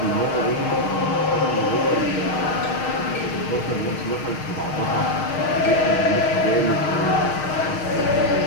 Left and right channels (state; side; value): late; right; 6.5 ms